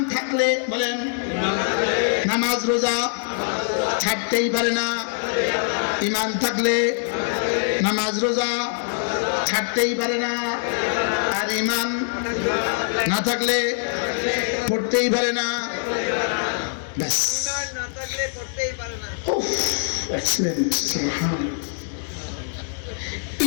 থাকলে বলেন নামাজ রোজা ছাড়তেই পারে না। ইমান থাকলে নামাজ রোজা ছাড়তেই পারে না, আর ইমান না থাকলে পড়তেই পারে না। ব্যাস,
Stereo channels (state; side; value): silent; right; digital silence